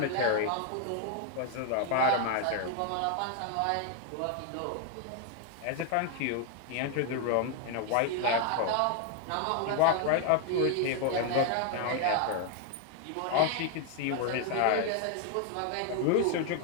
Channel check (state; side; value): different; both; correlation 0.00